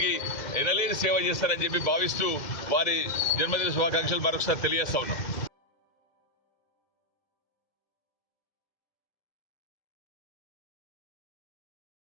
ఎనలేని సేవ చేస్తారని చెప్పి భావిస్తూ వారి జన్మదిన శుభాకాంక్షలు మరొకసారి తెలియజేస్తా ఉన్నాం.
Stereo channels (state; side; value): late; right; 2.0 ms